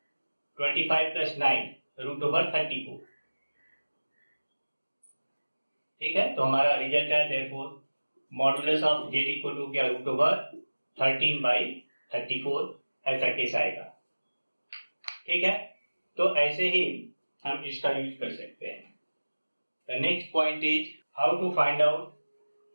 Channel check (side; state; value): both; inverted; correlation -1.00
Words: 25 प्लस 9 रूट ओवर 34. ठीक है. तो हमारा रिजल्ट है therefore modulus of z equal to क्या? Root over 13 by 34. ऐसा केस आएगा. ठीक है. तो ऐसे ही हम इसका यूज कर सकते हैं. The next point is how to find out